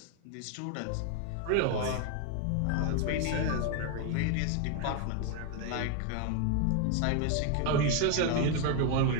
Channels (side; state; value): both; different; correlation 0.01